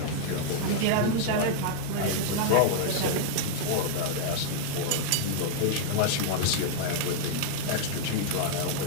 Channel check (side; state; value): both; different; correlation -0.01